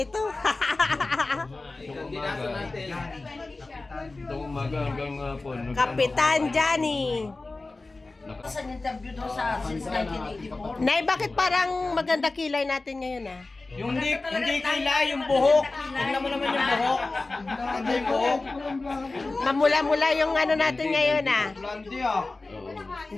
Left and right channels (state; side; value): quieter; right; 3.3 dB